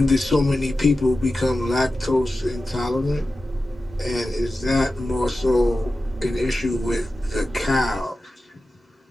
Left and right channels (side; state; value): both; normal; correlation 0.93